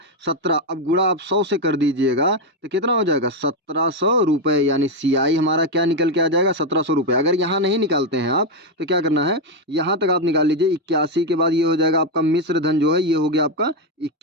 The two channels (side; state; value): both; normal; correlation 0.05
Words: 17। अब गुणा आप 100 से कर दीजिएगा तो कितना हो जाएगा? 1700 रुपये। यानी CI हमारा क्या निकल के आ जाएगा? 1700 रुपये। अगर यहाँ नहीं निकालते हैं आप तो क्या करना है, यहाँ तक आप निकाल लीजिए। 81 के बाद ये हो जाएगा आपका मिश्र धन जो है, ये हो गया आपका